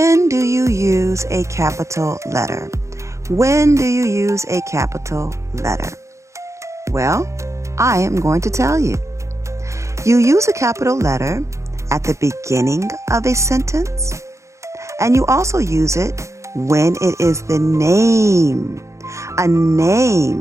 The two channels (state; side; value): late; left; 0.14 ms